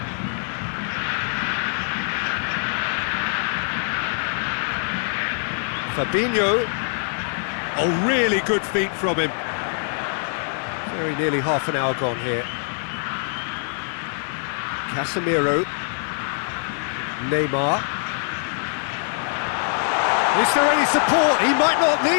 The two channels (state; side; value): silent; right; 59 dB below the other